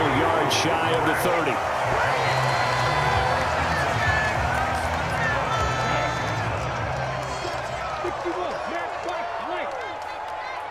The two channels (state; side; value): identical; both; correlation 1.00